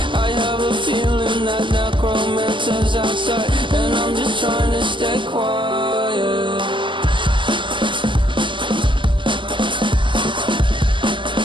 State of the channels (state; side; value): late; left; 0.24 ms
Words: I have a feeling that necromancer's outside, and I'm just trying to stay quiet.